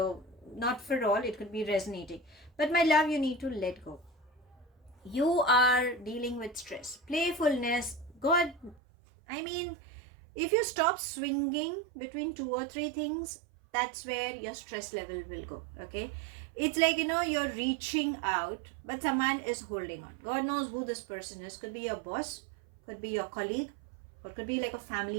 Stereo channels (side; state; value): left; drops out; at 8.8 s